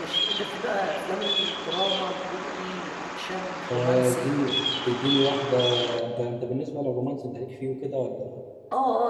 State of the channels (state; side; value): identical; both; correlation 1.00